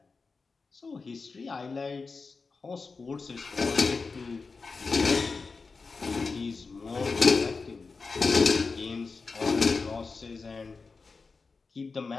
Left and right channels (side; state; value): right; quieter; 4.4 dB